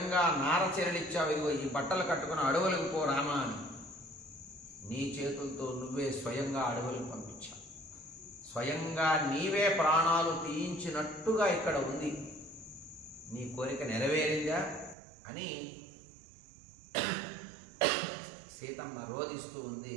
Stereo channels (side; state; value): left; drops out; at 15.0 s